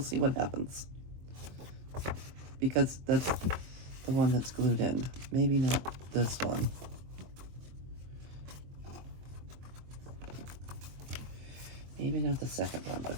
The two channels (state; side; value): late; left; 23 ms